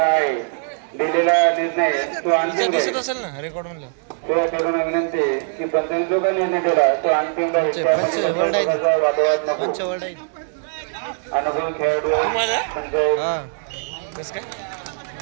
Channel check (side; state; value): left; silent; digital silence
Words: दिलेला निर्णय तो अंतिम राहील. त्या खेळाडूंना विनंती की पंचाने जो काही निर्णय दिला तो अंतिम राहील. त्यामध्ये वादवाद नको. अनुभवी खेळाडू